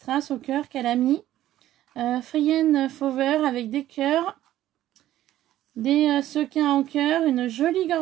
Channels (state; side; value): quieter; left; 13.5 dB